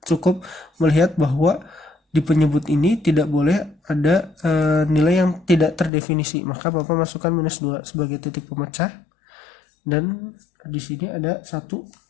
melihat bahwa di penyebut ini tidak boleh ada nilai yang tidak terdefinisi. Maka Bapak masukkan minus 2 sebagai titik pemecah, dan di sini ada 1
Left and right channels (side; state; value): right; drops out; at 5.9 s